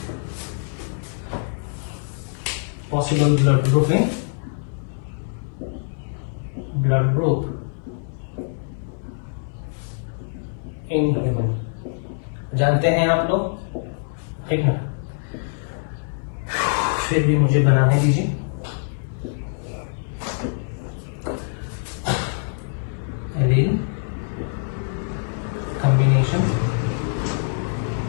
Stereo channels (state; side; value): silent; right; digital silence